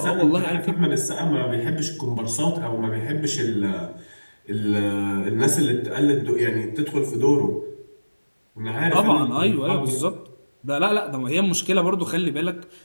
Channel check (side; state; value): both; inverted; correlation -1.00